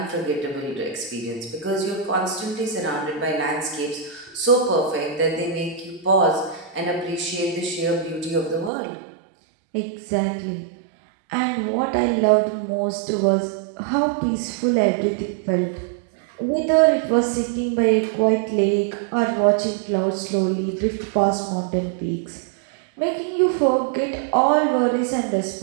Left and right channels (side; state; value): left; drops out; at 8.7 s